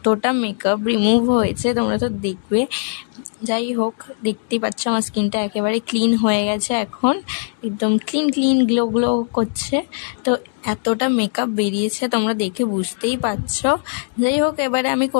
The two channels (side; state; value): right; silent; digital silence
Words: মেকআপ রিমুভ হয়েছে, তোমরা তো দেখবে। যাই হোক, দেখতেই পাচ্ছ আমার স্কিনটা একেবারে ক্লিন হয়ে গেছে, এখন একদম ক্লিন গ্লো গ্লো করছে। তো এতটা মেকআপ বেরিয়েছে তোমরা দেখে বুঝতেই পারছো। যাই হোক, এবারে আমি